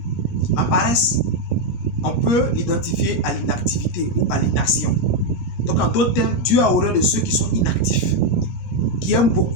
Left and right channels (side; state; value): right; late; 17 ms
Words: La paresse, on peut l'identifier à l'inactivité ou à l'inaction. Donc en d'autres termes, Dieu a horreur de ceux qui sont inactifs, qui aiment